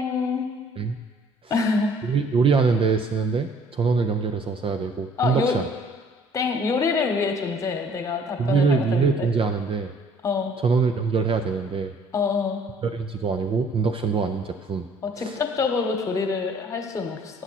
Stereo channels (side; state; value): both; normal; correlation 0.57